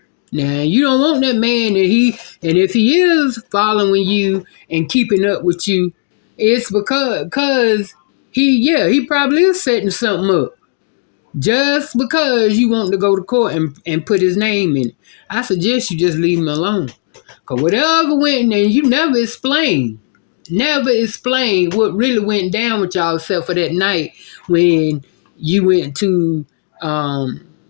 Now you don't want that man and if he is following you and keeping up with you, it's because he probably is setting something up. Just because you want to go to court and put his name in it. I suggest you just leave him alone. Because whatever went, and you never explained what really went down with y'all except for that night when you went to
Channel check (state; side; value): silent; right; digital silence